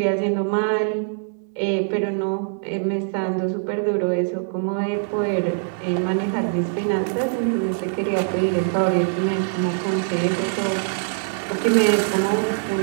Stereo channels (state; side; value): silent; left; digital silence